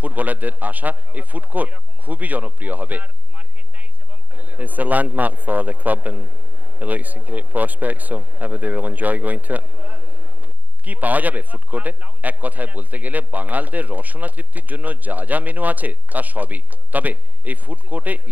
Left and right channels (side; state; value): left; late; 0.080 ms